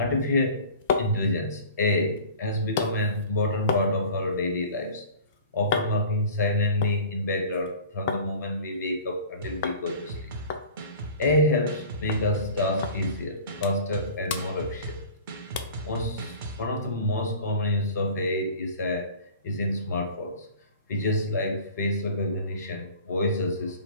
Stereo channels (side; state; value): both; inverted; correlation -0.43